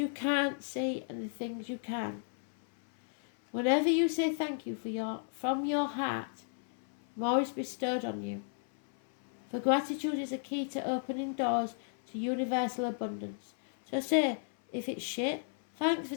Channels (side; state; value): right; silent; 55 dB below the other